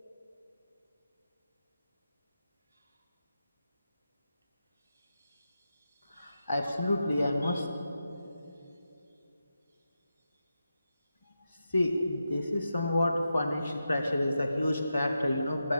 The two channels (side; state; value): both; inverted; correlation -0.89